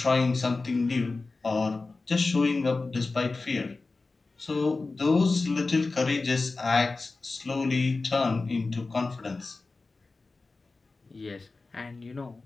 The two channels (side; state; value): right; quieter; 3.7 dB